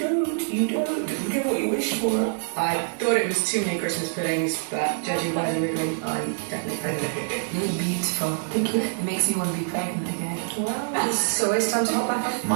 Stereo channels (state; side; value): silent; left; 55 dB below the other